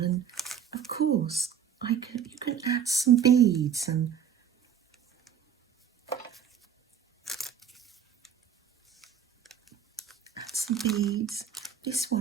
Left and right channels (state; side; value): quieter; left; 8.1 dB